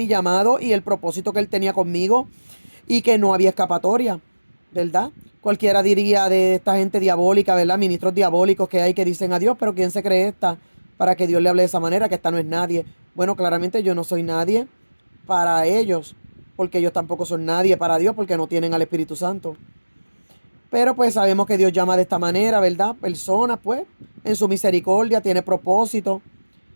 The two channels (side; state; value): both; inverted; correlation -1.00